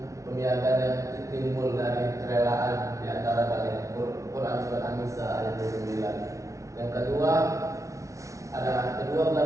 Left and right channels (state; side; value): late; left; 0.15 ms